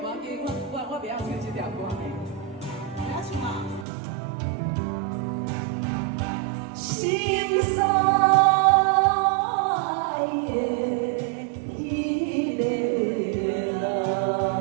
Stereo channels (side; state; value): left; drops out; at 3.9 s